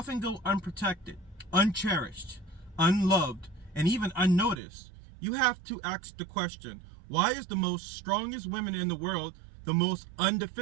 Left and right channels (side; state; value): left; drops out; at 4.6 s